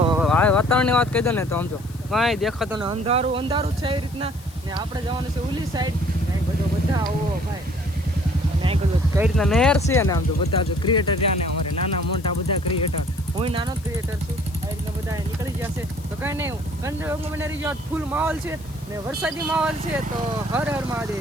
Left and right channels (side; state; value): left; noise; hiss, 22 dB below the sound